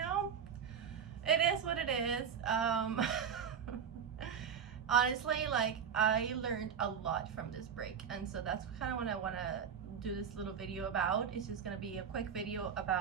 it is what it is. Honestly, like I learned a lot from this break, and so that's kind of what I want to do this little video about. It's just gonna be a quick video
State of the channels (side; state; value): left; quieter; 7.4 dB